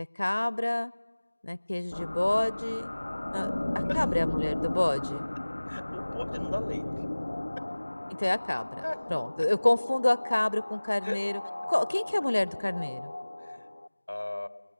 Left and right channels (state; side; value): inverted; both; correlation -1.00